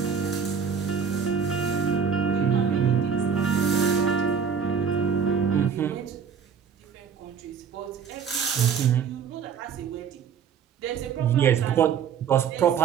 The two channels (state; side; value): quieter; left; 7.0 dB